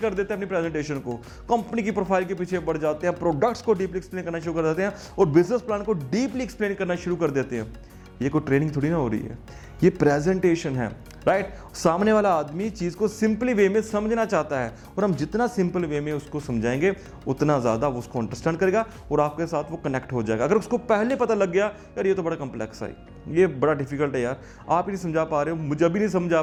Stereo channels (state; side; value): identical; both; correlation 1.00